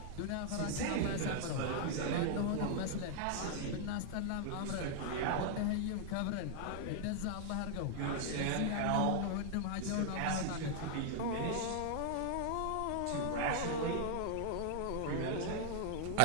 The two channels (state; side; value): different; both; correlation 0.00